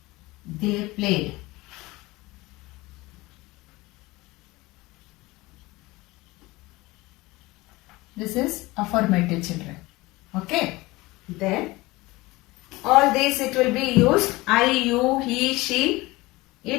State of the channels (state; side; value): quieter; right; 21.0 dB